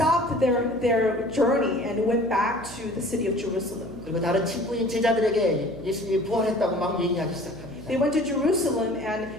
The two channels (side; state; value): right; noise; hum, 14 dB below the sound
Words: their journey and went back to the city of Jerusalem. 그리고 다른 친구인 제자들에게 예수님이 부활했다고 막 얘기하기 시작합니다. They went to Jerusalem